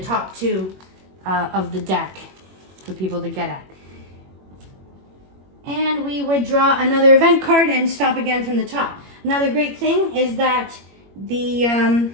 two of the deck for people to get at. And we would draw another event card and stop again from the top. Another great thing is that the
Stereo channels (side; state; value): left; late; 21 ms